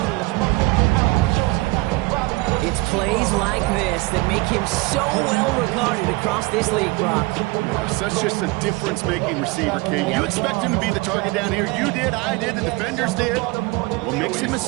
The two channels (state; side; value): quieter; left; 23.0 dB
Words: It's plays like this that make him so well regarded across this league, Brock. Yeah, such just a difference-making receiver, King. You expect him to be the target down here. You did, I did, the defenders did. What makes him a